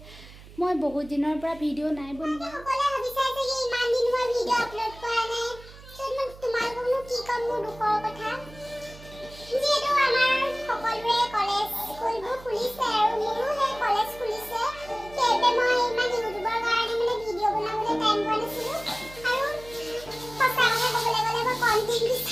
মই বহুত দিনৰ পৰা ভিডিঅ' নাই বনোৱা। সকলোৱে ভাবিছে যে ইমান দিন মই ভিডিঅ' আপলোড কৰা নাই। তোমালোককনো কি ক'ম মোৰ দুখৰ কথা। যিহেতু আমাৰ সকলোৰে কলেজ স্কুলবোৰ খুলিছে আৰু মোৰো সেই কলেজ খুলিছে, সেইবাবে মই ইমান ইউটিউবৰ কাৰণে ভিডিঅ' বনাবলৈ টাইম পোৱা নাছিলোঁ আৰু সঁচা কথা ক'বলৈ গ'লে মই কণ্টেণ্ট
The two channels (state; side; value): noise; right; hum, 19 dB below the sound